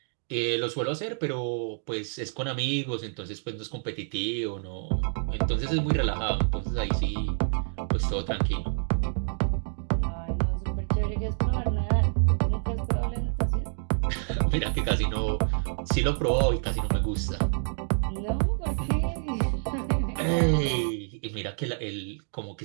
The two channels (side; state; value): left; silent; digital silence